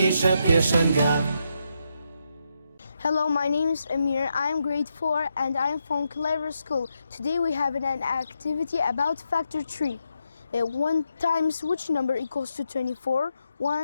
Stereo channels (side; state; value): both; inverted; correlation -0.82